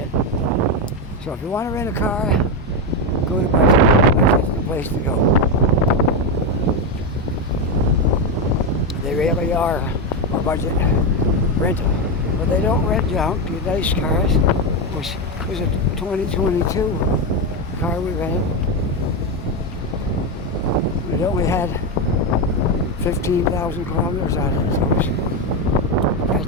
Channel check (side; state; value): both; normal; correlation 0.10